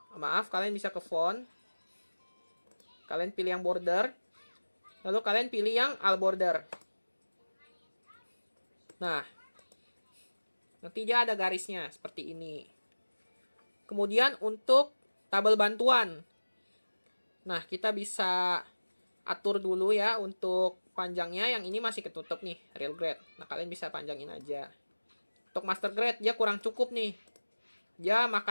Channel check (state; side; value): inverted; both; correlation -1.00